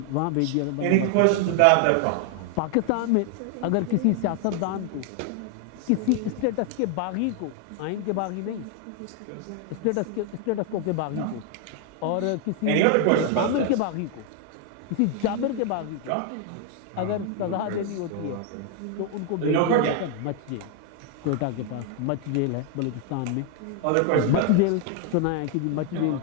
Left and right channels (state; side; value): different; both; correlation 0.00